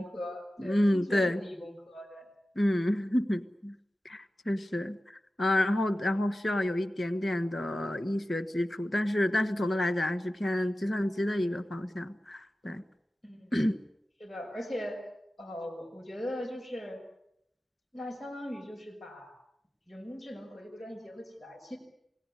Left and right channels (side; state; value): both; normal; correlation 0.94